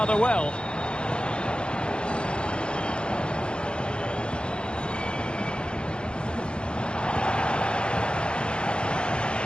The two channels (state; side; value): late; right; 0.054 ms